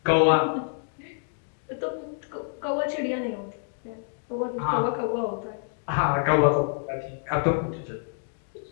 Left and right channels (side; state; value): right; silent; 60 dB below the other